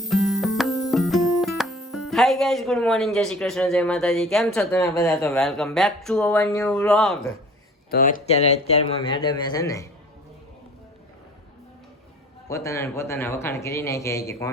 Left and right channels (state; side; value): normal; both; correlation 0.47